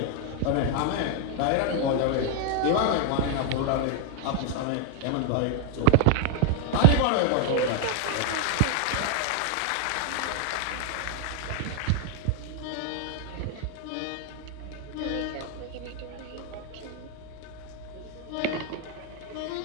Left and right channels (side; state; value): both; different; correlation 0.00